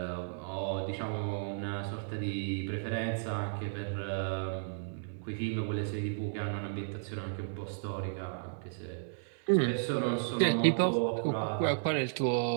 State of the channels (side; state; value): left; silent; 55 dB below the other